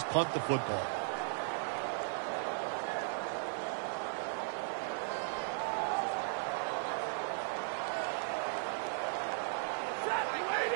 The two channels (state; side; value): silent; left; 53 dB below the other